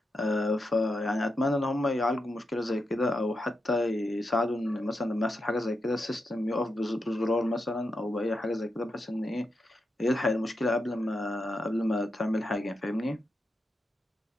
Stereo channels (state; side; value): normal; both; correlation 0.86